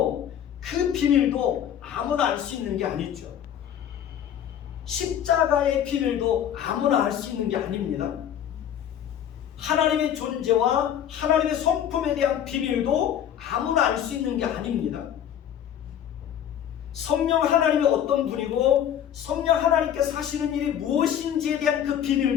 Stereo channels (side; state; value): right; quieter; 9.8 dB